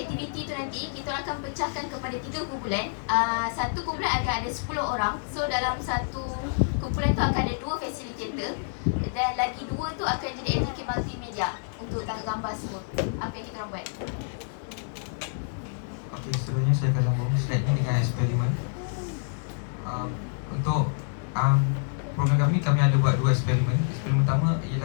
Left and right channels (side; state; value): right; silent; digital silence